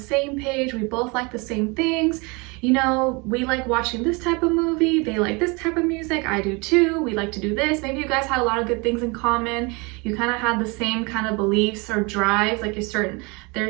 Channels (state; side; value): quieter; left; 28.5 dB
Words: same page. We both like the same things. You know, we like watching this type of movie. They like this type of music. I do too. We like to do this. Maybe you guys had a lot of good things in common. You kind of had the same kind of beliefs or drives. Like